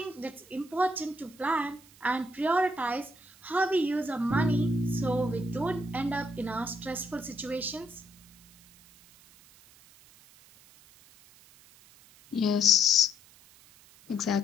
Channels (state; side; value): noise; right; hiss, 25 dB below the sound